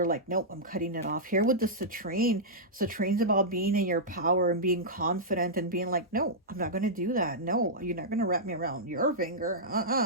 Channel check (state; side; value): normal; both; correlation -0.11